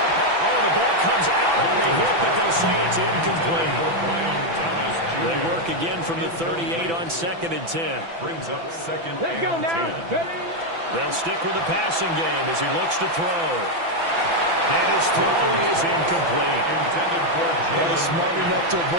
Oh, the ball comes out on the hit, but they'll say it's incomplete. They work again from the 38 on 2nd and 10. Brings up 2nd Let's go and now. 10. Ready? They'll stick with the passing game as he looks to throw. And his throw is incomplete. Intended for Well, he's smart enough to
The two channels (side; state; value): left; late; 6.0 ms